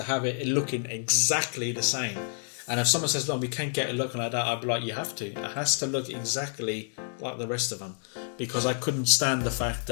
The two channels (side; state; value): right; silent; digital silence